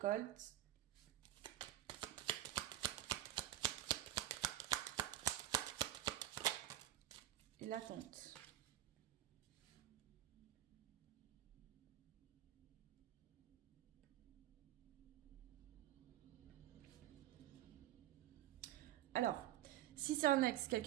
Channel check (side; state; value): left; quieter; 13.6 dB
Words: Et l'attente. Alors, si c'est un ex,